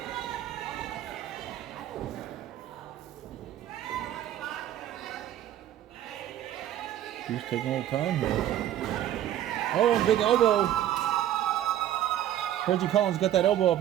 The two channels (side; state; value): left; quieter; 12.0 dB